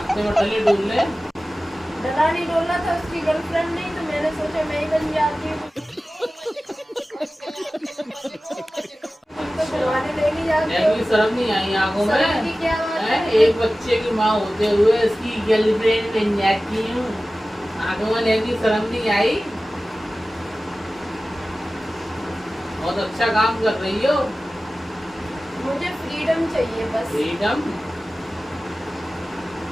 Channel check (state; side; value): normal; both; correlation 0.96